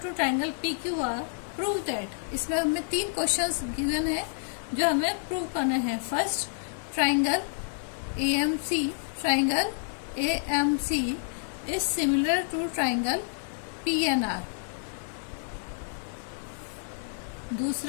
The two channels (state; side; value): silent; right; 59 dB below the other